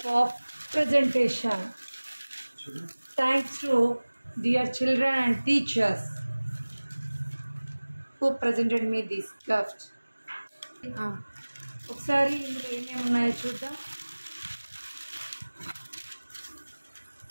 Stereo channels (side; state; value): both; inverted; correlation -1.00